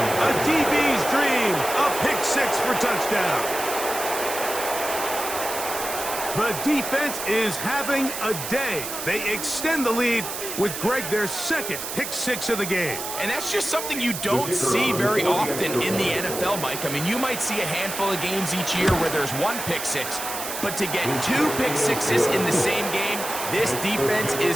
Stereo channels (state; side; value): noise; right; hiss, 6 dB below the sound